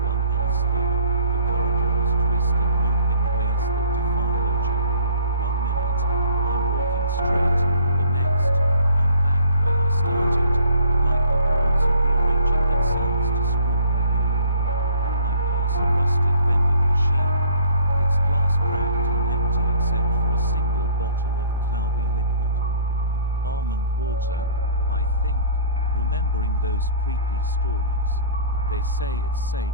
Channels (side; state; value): both; inverted; correlation -0.52